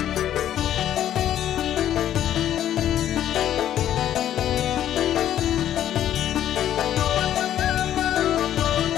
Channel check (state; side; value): quieter; right; 11.2 dB